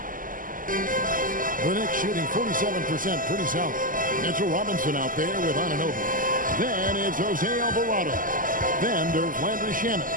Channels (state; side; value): late; left; 0.40 ms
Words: The Knicks shooting 47%, pretty solid. Mitchell Robinson out there with Anunoby. Then it's Jose Alvarado. Then there's Landry Shamet.